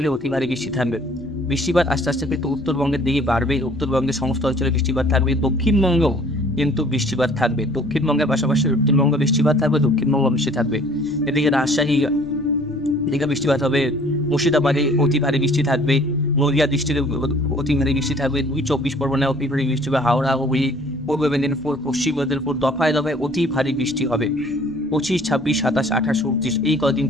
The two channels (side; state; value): left; noise; rumble, 23 dB below the sound